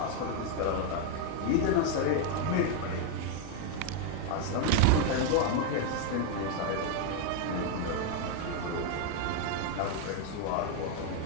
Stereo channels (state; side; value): different; both; correlation 0.01